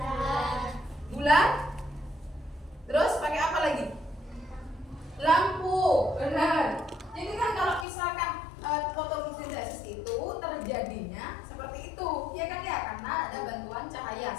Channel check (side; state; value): right; drops out; at 7.9 s